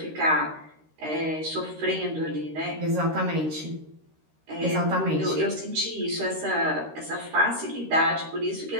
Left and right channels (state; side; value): late; left; 13 ms